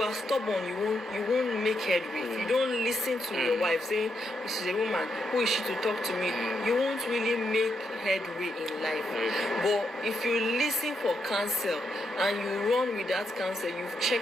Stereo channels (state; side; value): normal; both; correlation 0.81